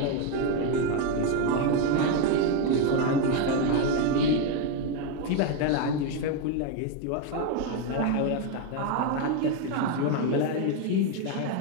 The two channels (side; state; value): both; different; correlation 0.02